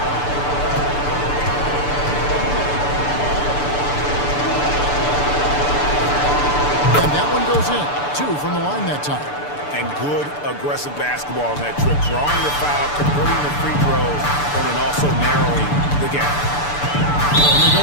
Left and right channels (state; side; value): late; right; 6.9 ms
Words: And that one goes in. 2 from the line that time. And good aggressive basketball on that trip. Drawing the foul, converting the free throws, and then also narrowing the gap. And they go